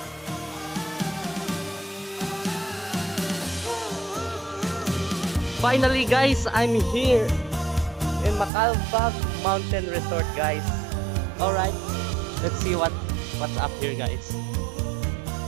Finally guys, I'm here in Macalbag Mountain Resort guys. Alright, let's see what's up here guys.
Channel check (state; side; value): drops out; left; at 8.5 s